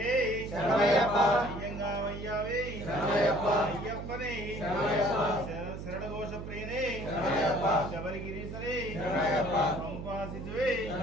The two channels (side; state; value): right; noise; hum, 8 dB below the sound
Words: శరణమయ్యప్ప. అయ్యంగావయ్యావే శరణమయ్యప్ప. అయ్యప్పనే శరణమయ్యప్ప. శరణఘోష ప్రియనే శరణమయ్యప్ప. శబరిగిరీశరే శరణమయ్యప్ప. పంపాసిజువే